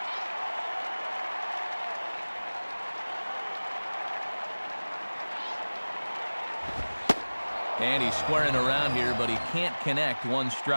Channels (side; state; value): both; inverted; correlation -1.00